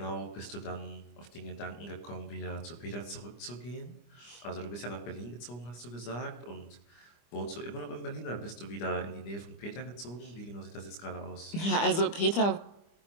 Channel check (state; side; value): late; right; 25 ms